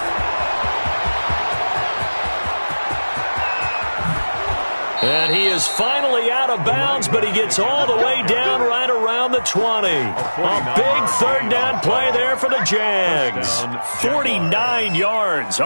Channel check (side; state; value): both; inverted; correlation -1.00